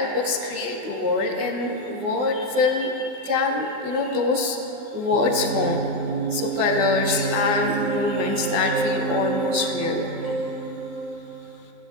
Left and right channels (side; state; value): left; late; 19 ms